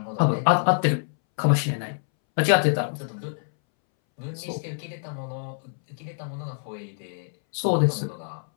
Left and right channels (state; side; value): silent; right; 61 dB below the other